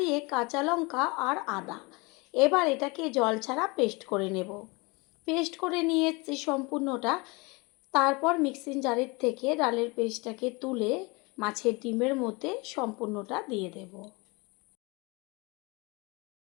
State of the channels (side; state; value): right; quieter; 27.0 dB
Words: কাঁচা লঙ্কা আর আদা। এবার এটাকে জল ছাড়া পেস্ট করে নেব। পেস্ট করে নিয়েছি সম্পূর্ণটা। তারপর মিক্সিং জারের থেকে ডালের পেস্টটাকে তুলে মাছের ডিমের মধ্যে সম্পূর্ণটা দিয়ে দেব।